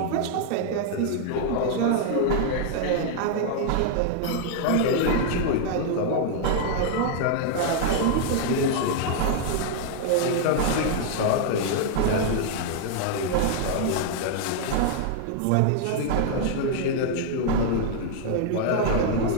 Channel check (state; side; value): different; both; correlation 0.00